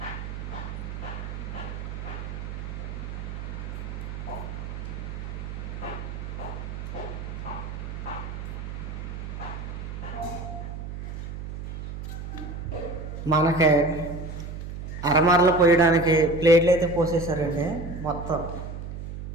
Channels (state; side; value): noise; right; hum, 7 dB below the sound